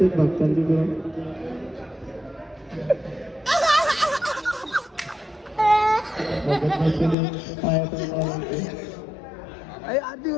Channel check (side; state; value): right; drops out; at 7.2 s